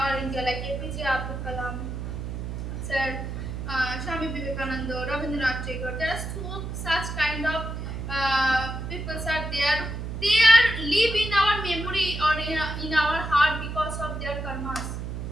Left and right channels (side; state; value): right; noise; hum, 5 dB below the sound